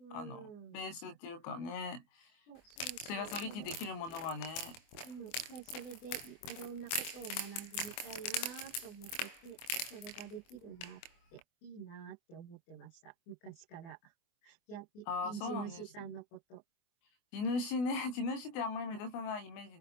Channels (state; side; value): late; right; 25 ms